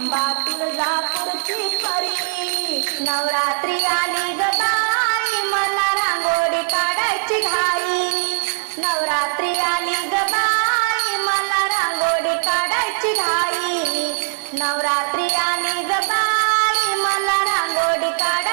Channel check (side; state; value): left; silent; digital silence